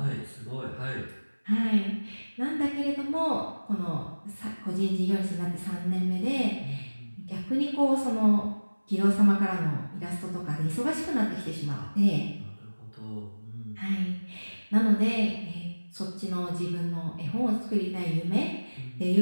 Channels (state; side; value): inverted; both; correlation -1.00